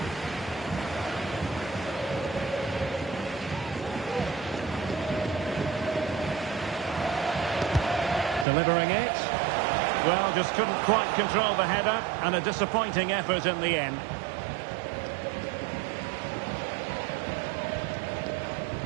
Delivering it. Well, just couldn't quite control the header, and a disappointing effort in the end.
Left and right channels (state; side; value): drops out; left; at 8.5 s